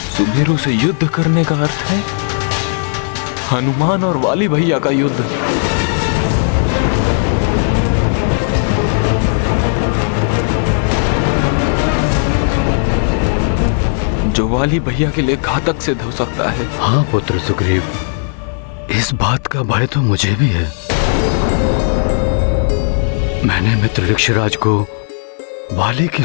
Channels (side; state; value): right; silent; digital silence